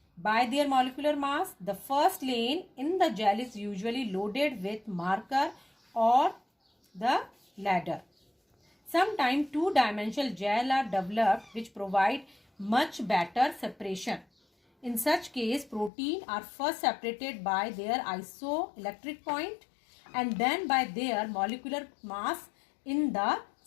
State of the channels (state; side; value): drops out; right; at 15.9 s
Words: by their molecular mass. The first lane in the gel is usually loaded with marker or the ladder. Sometimes two-dimensional gel are developed which provide much better separation. In such case, protein are first separated by their isoelectric point and then by their molecular mass in the